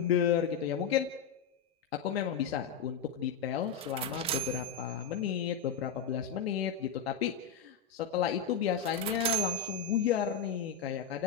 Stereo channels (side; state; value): right; quieter; 6.5 dB